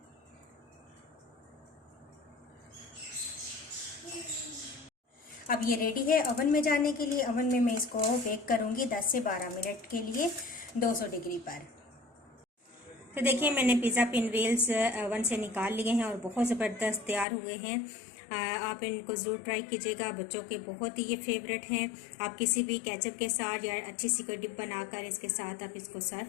अब ये रेडी है ओवन में जाने के लिए। ओवन में मैं इसको बेक करूंगी 10 से 12 मिनट के लिए 200 डिग्री पर। तो देखिए मैंने पिज़्ज़ा पिन व्हील्स ओवन से निकाल लिए हैं और बहुत ज़बरदस्त तैयार हुए हैं। आप इनको ज़रूर ट्राई कीजिएगा, बच्चों के बहुत ही ये फेवरेट हैं। आप किसी भी केचप के साथ या अच्छी सी कोई डिप बनाकर इसके साथ आप इसको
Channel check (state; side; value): drops out; right; at 17.2 s